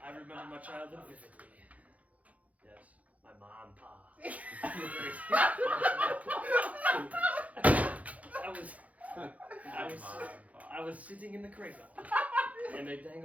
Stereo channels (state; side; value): late; left; 0.069 ms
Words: I remember my childhood vividly. Yes, my mom, pa. I was sitting in the cradle, and they